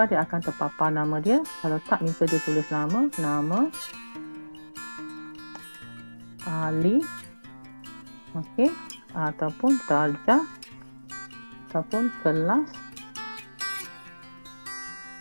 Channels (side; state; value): both; inverted; correlation -1.00